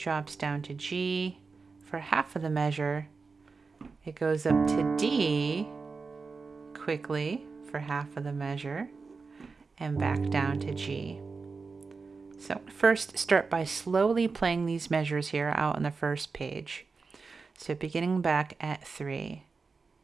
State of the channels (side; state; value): left; quieter; 4.5 dB